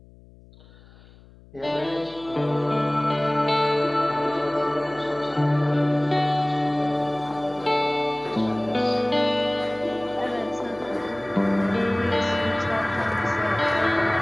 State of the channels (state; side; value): noise; left; hum, 24 dB below the sound